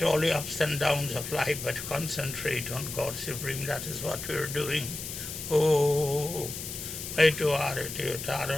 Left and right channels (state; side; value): noise; left; hiss, 8 dB below the sound